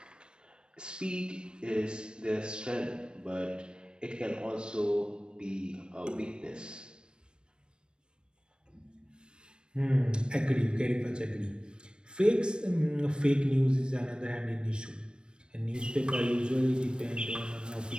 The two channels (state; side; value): late; left; 0.053 ms